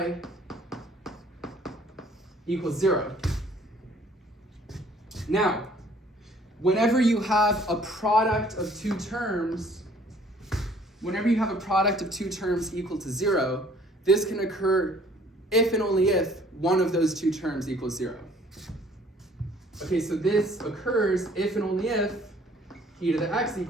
equals 0. Now, whenever you have a product of two terms, equal to 0, this can occur if and only if one of those two terms equals 0. Okay, so this occurs if and only if e to the x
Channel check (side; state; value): both; normal; correlation 0.57